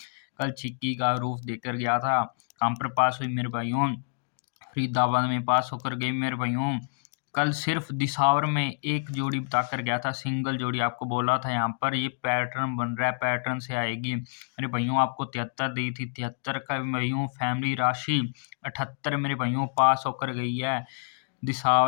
कल छिक्की का रूप देकर गया था। कहाँ पर पास हुई मेरे भाइयों? फरीदाबाद में पास होकर गई मेरे भाइयों। कल सिर्फ दिसावर में एक जोड़ी बताकर गया था, सिंगल जोड़ी। आपको बोला था यहाँ पर ये पैटर्न बन रहा है, पैटर्न से आएगी मेरे भाइयों। आपको 73 दी थी, 73 का भाइयों फैमिली राशि 78 मेरे भाइयों पास होकर गई है।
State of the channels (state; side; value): silent; right; digital silence